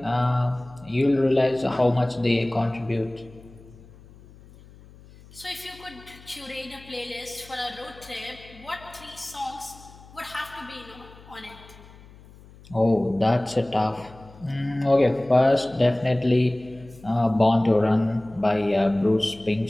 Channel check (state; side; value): noise; left; hum, 22 dB below the sound